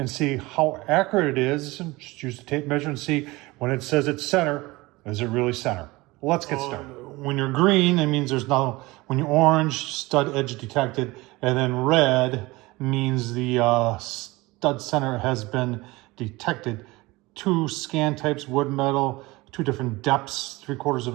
see how accurate it is, and just use the tape measure and see when it says it's center, is it really center? Let's get started. When you're green, it means there's no, when you're orange, stud edge detected, and then red means the stud center has been detected. 2 scan types, wood, metal, 2 different depths, 3/4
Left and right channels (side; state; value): left; quieter; 21.5 dB